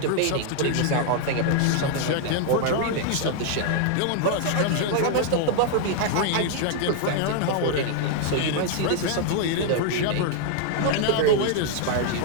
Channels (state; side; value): different; both; correlation 0.00